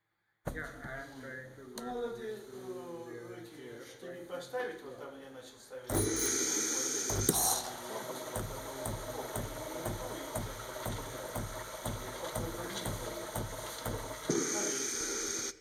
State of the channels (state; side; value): identical; both; correlation 1.00